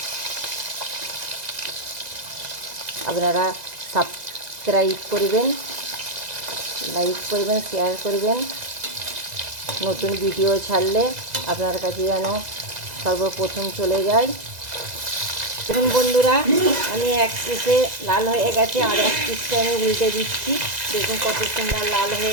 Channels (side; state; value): left; late; 2.0 ms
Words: আপনারা সাবস্ক্রাইব করবেন, লাইক করবেন, শেয়ার করবেন। নতুন ভিডিও ছাড়লে আপনার কাছে যেন সর্বপ্রথম চলে যায়। দেখুন বন্ধুরা, আমি এক পিসে লাল হয়ে গেছে, আর এক পিসটা আমি উল্টে দিচ্ছি। দেখুন কত সুন্দর লাল